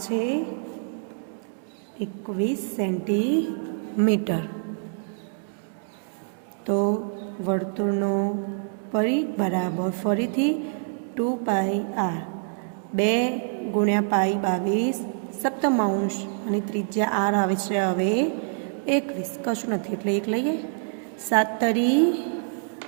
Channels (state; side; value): silent; left; digital silence